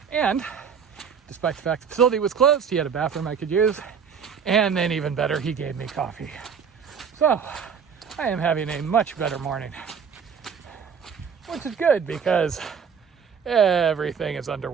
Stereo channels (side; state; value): left; quieter; 6.8 dB